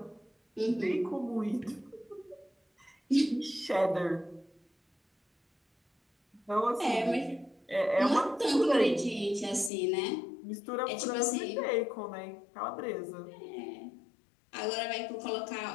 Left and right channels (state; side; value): drops out; right; at 9.7 s